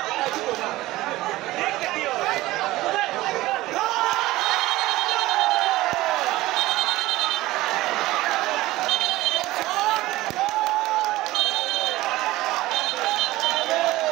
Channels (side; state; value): left; quieter; 17.8 dB